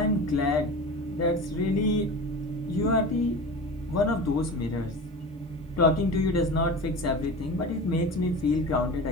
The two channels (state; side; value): normal; both; correlation 0.32